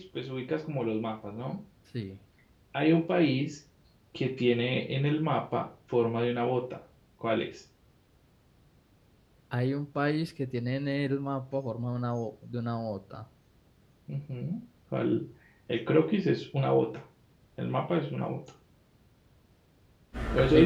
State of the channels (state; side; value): identical; both; correlation 1.00